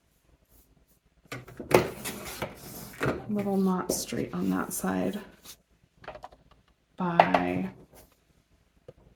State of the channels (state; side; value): identical; both; correlation 1.00